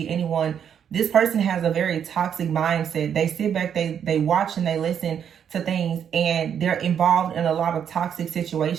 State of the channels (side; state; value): left; quieter; 8.4 dB